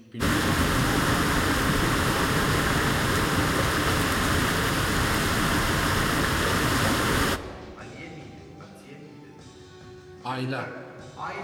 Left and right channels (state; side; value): identical; both; correlation 1.00